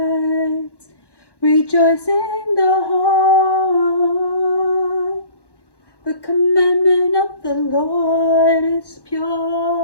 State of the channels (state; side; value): late; right; 1.1 ms